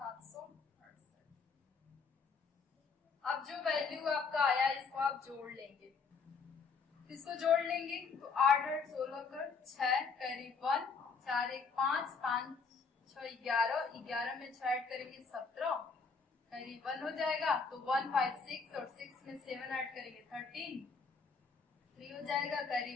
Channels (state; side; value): quieter; right; 5.0 dB